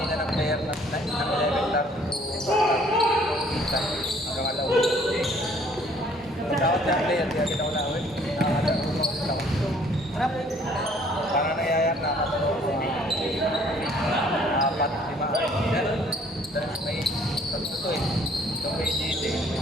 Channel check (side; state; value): both; normal; correlation 0.59